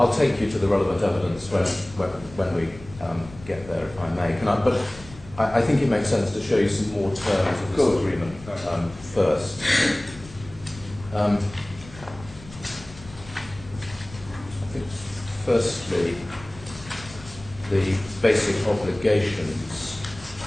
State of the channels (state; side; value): noise; left; rumble, 18 dB below the sound